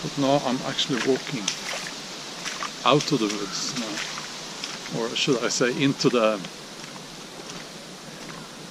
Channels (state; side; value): identical; both; correlation 1.00